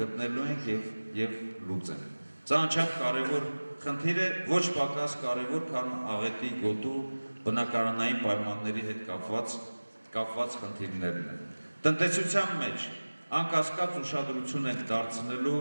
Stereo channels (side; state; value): both; inverted; correlation -1.00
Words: ենք եւ լուծենք։ Սա անչափ կարևոր խնդիր է, ոչ պակաս կարևոր, քան աղետի գոտու բնակարանային պայմանների հետ կապված խնդիրներն են։ Տնտեսության մեջ անկասկած ուշադրություն ենք դարձնելու